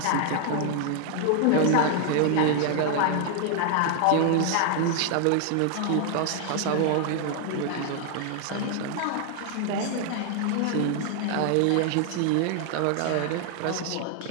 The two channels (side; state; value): both; different; correlation 0.00